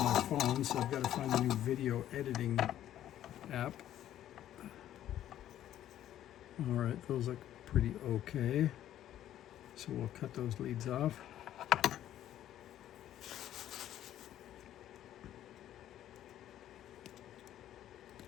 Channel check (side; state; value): right; quieter; 12.0 dB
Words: my phone, so I've got to find a new video editing app. All right, those look pretty okay. So we'll cut those leads off.